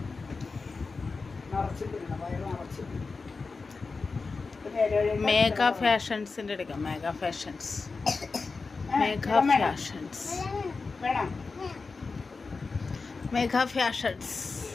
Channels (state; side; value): quieter; right; 4.3 dB